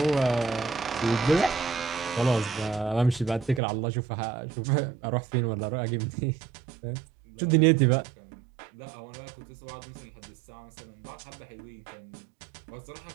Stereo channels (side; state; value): left; drops out; at 3.6 s